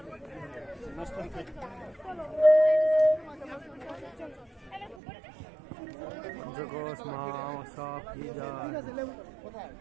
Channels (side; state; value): left; drops out; at 5.0 s